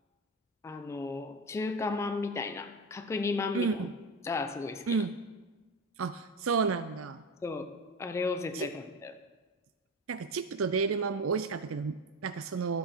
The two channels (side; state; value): both; normal; correlation 0.21